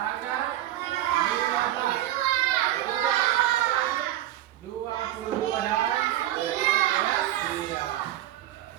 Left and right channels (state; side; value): quieter; left; 13.5 dB